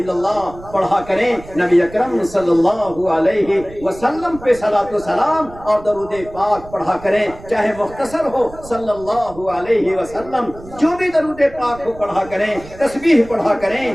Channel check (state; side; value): noise; right; rumble, 18 dB below the sound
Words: اللہ پڑھا کریں. نبی اکرم صلی اللہ علیہ وسلم پہ صلاۃ و سلام اور درود پاک پڑھا کریں، چاہے مختصر ہو صلی اللہ علیہ وسلم. جو بھی درود پاک ہو پڑھا کریں، تسبیح پڑھا کریں،